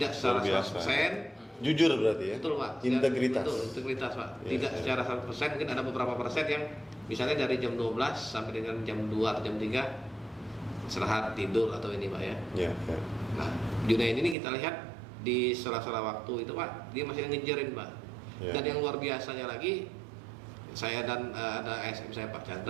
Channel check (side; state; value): left; drops out; at 14.4 s